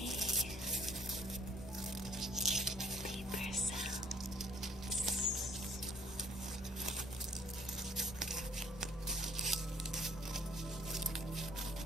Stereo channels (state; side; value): normal; both; correlation 0.60